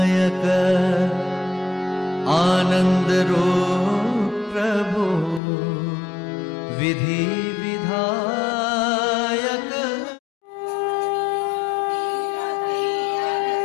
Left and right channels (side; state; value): right; drops out; at 5.4 s